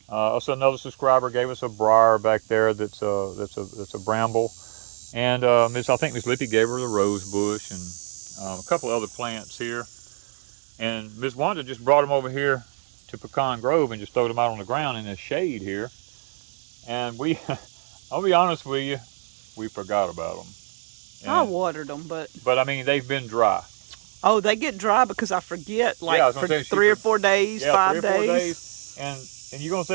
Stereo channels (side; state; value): left; silent; digital silence